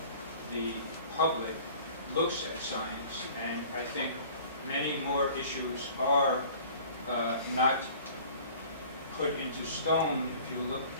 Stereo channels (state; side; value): inverted; both; correlation -0.47